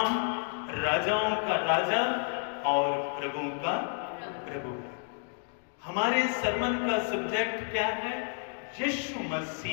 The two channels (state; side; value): silent; right; 56 dB below the other